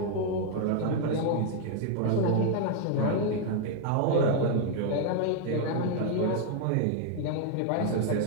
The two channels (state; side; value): different; both; correlation 0.00